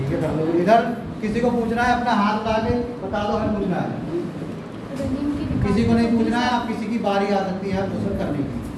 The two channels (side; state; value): both; identical; correlation 1.00